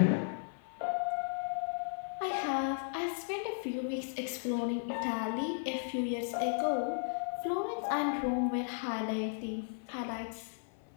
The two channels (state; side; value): silent; right; 54 dB below the other